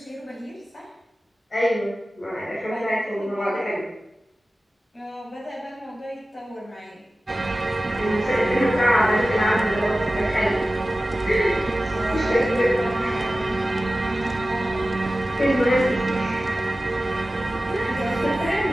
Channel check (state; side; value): normal; both; correlation 0.95